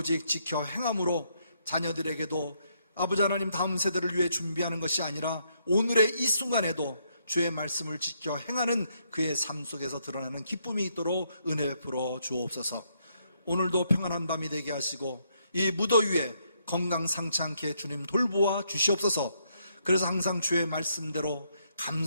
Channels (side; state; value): both; inverted; correlation -0.75